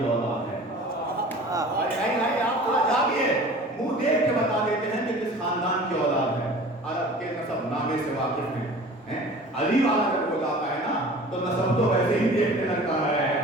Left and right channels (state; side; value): normal; both; correlation 0.42